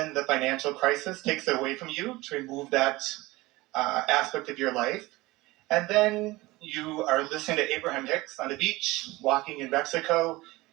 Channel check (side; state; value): left; quieter; 20.5 dB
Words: the financial crisis takes it away from you to remove that aspect of your life. And then you are listening to Abraham Hicks on the beach, walking in Mexico,